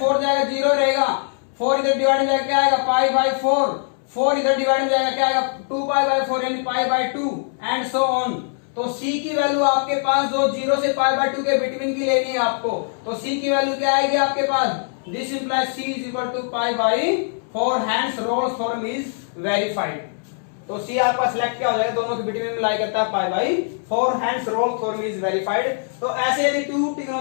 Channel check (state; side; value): silent; right; 64 dB below the other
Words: जाएगा 0 रहेगा, 4 इधर डिवाइड हो जाएगा क्या आएगा π/4, 4 इधर डिवाइड हो जाएगा क्या आएगा 2 π/4 यानी π/2 एंड सो ऑन। तो c की वैल्यू आपके पास जो 0 से π/2 के बिटवीन की लेनी है आपको, तो c की वैल्यू क्या आएगी आपके पास, this implies c is equal to π/4, hence Rolle's theorem is verified. तो C आपका सिलेक्ट क्या हो जाएगा, दोनों के बिटवीन में लाई करता है π/4, hence Rolle's theorem is verified. तो ऐसे यदि टू